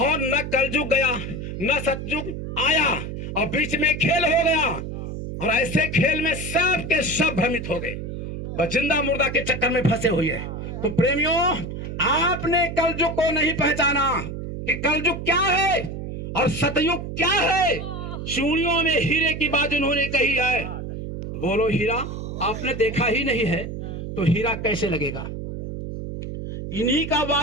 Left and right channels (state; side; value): noise; right; hum, 7 dB below the sound